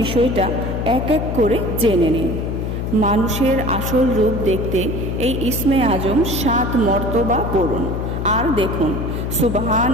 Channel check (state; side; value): noise; left; hum, 3 dB below the sound